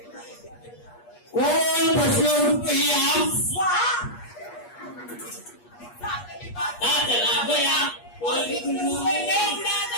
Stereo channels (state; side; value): late; right; 8.4 ms